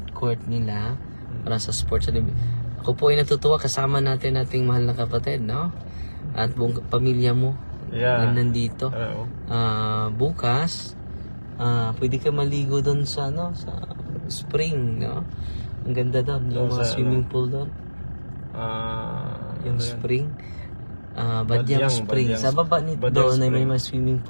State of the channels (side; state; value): both; inverted; correlation -1.00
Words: court nila para sa sports. Ako po ay natutuwa, kasama natin ating mahal na kapatid, no? At buong pamilya mo na nandito. Bukas, pwede ka maligo doon sa spring, no? Ang ganda doon, yung mga swimming pool doon. Yung spring. Badyang Spring. Sa baba nito doon ay may mga swimming